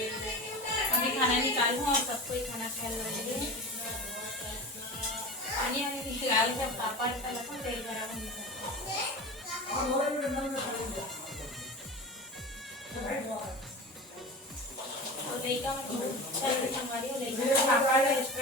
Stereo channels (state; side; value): normal; both; correlation 0.31